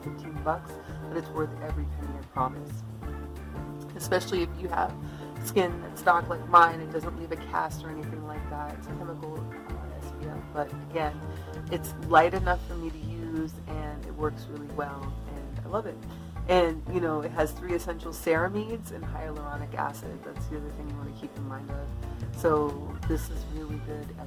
15 bucks, but it's worth every penny, I promise. Especially if you have skin that's dark like mine, it doesn't leave a cast or anything like that. It's a chemical SPF, but again, it's light enough for me to use, and it works really well, and I love it. And, you know, it has 3 essential ceramides and hyaluronic acid. That's the other thing you want to keep in mind of. So this is really good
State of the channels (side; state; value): both; identical; correlation 1.00